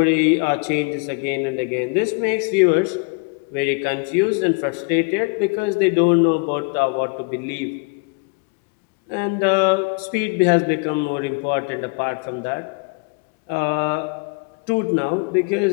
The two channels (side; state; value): right; quieter; 31.8 dB